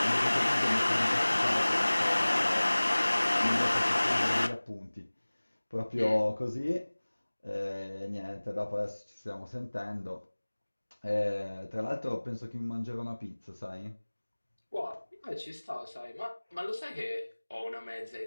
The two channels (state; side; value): inverted; both; correlation -1.00